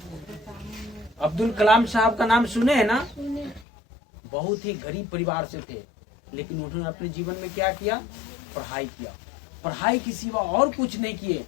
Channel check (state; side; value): drops out; right; at 3.7 s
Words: अब्दुल कलाम साहब का नाम सुने हैं ना? बहुत ही गरीब परिवार से थे, लेकिन उन्होंने अपने जीवन में क्या किया? पढ़ाई किया। पढ़ाई के सिवा और कुछ नहीं किए,